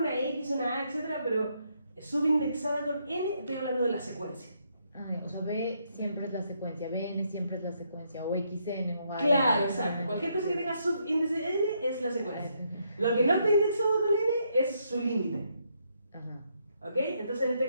X, una A, etcétera, pero subindexada con N, estoy hablando de la secuencia. Ah, o sea, B siempre es la secuencia, BN siempre es la secuencia, o XN o A. Claro, exacto. Cualquier cosa que tenga subíndice N es la secuencia. Lo que no está indexado con N es su límite. Ajá. ¿Ok? Entonces en este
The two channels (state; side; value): inverted; both; correlation -0.75